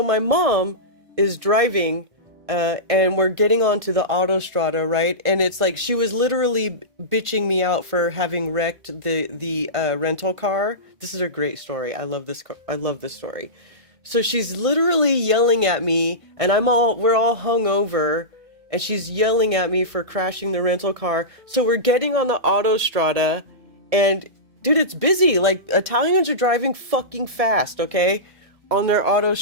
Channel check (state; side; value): late; left; 1.6 ms